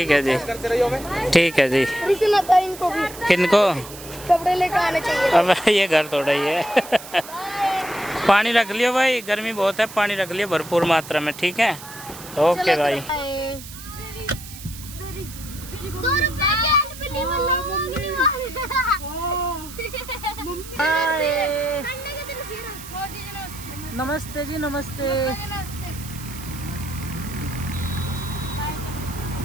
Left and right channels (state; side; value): noise; right; hiss, 14 dB below the sound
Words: है जी, ठीक है जी। किनको कपड़े लेकर आने चाहिए। अब ये घर थोड़ा ही है। पानी रख लियो भाई, गर्मी बहुत है, पानी रख लियो भरपूर मात्रा में, ठीक है? ओके भाई। 2 रुपए के अनपढ़ी वाला मांगने वाले। नमस्ते जी, नमस्ते।